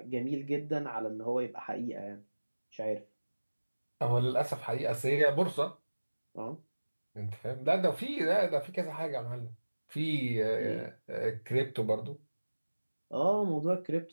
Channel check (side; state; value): both; inverted; correlation -1.00